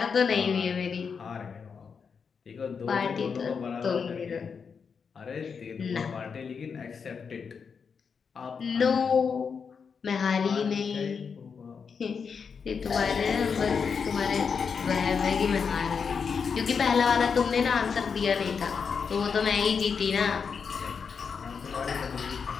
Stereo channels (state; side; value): quieter; right; 6.0 dB